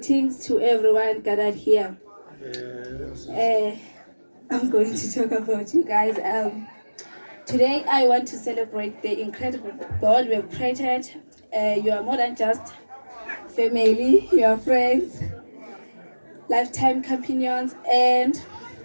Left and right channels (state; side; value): inverted; both; correlation -1.00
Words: to everyone gathered here. I'm going to talk about you guys. Today, I want to celebrate the incredible bond we have created. You are more than just family, you are friends, lifetime companions, and